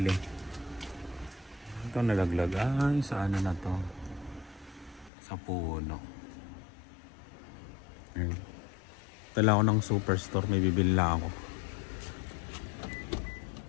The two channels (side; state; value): right; drops out; at 5.1 s